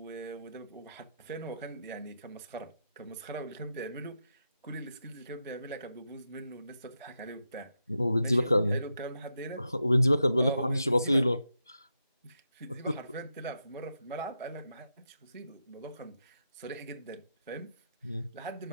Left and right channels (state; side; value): inverted; both; correlation -0.86